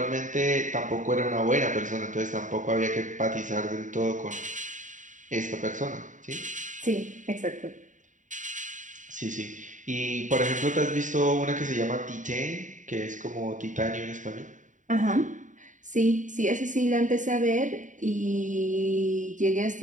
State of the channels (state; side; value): late; left; 0.37 ms